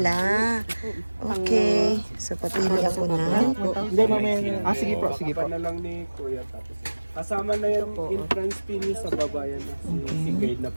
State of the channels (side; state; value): both; inverted; correlation -1.00